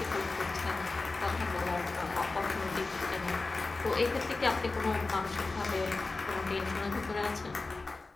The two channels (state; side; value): quieter; right; 3.5 dB